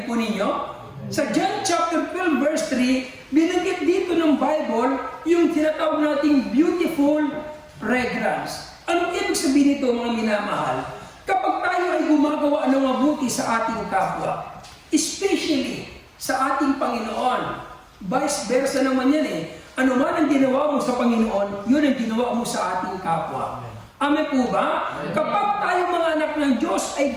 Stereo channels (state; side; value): identical; both; correlation 1.00